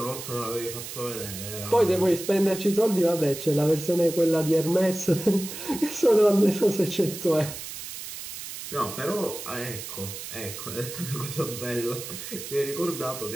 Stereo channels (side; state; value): right; noise; hiss, 10 dB below the sound